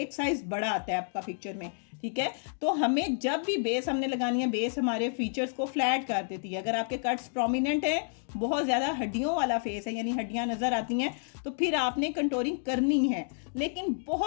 साइज़ बड़ा आता है आपका पिक्चर में। ठीक है, तो हमें जब भी बेस हमने लगानी है, बेस हमारे फीचर्स को फ्लैट कर देती है। अगर आपके कट्स प्रोमिनेंट है, बहुत ज़्यादा हड्डियों वाला फेस है, यानी हड्डियां नज़र आती हैं, तो फिर आपने कंटोरिंग करनी है, लेकिन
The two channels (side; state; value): right; silent; digital silence